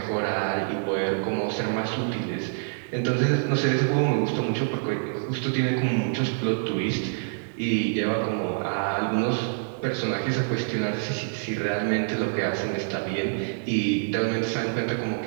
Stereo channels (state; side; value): silent; left; digital silence